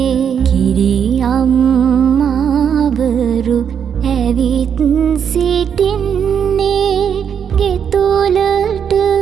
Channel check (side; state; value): left; quieter; 7.8 dB